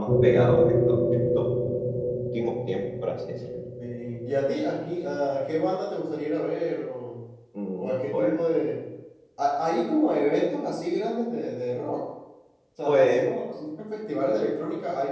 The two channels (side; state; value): both; identical; correlation 1.00